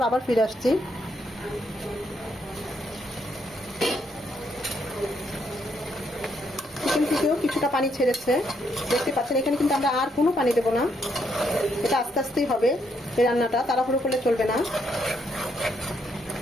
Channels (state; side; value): normal; both; correlation 0.75